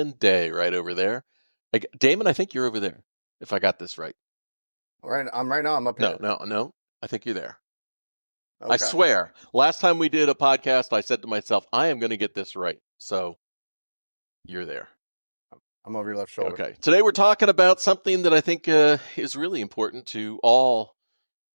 Day right over there. Damon, I think you're over there, if I got this right. Right now. I'm up No, here. no, no. I think you're there. I Okay. swear. Last time we did a podcast, I said to myself, I am going to get this right. So you're there. I'm over your left shoulder. Okay. Today we're talking about something that I think is really important to all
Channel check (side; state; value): both; inverted; correlation -1.00